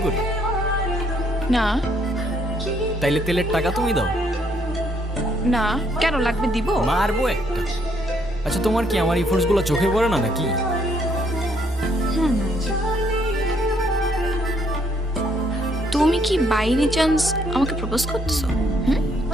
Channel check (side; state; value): both; normal; correlation 0.69